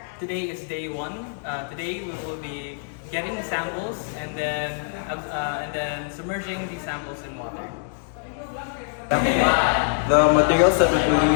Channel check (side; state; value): right; silent; digital silence